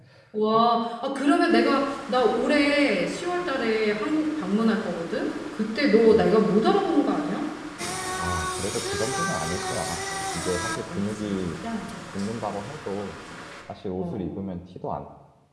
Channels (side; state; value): both; identical; correlation 1.00